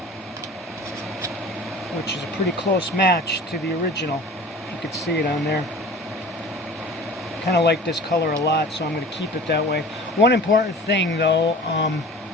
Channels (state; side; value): normal; both; correlation 0.41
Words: which is a pretty close match to the original. You could see it on there. Kind of like this color a lot, so I'm going to keep it that way. One important thing though,